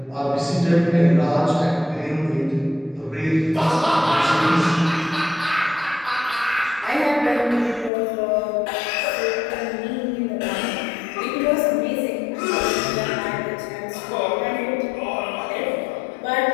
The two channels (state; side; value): drops out; right; at 7.9 s